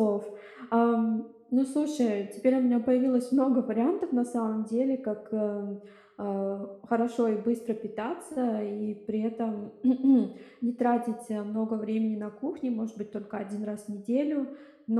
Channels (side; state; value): both; identical; correlation 1.00